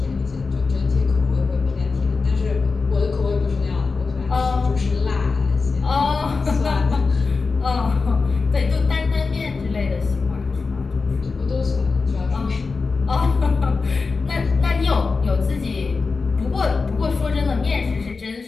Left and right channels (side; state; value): right; quieter; 4.4 dB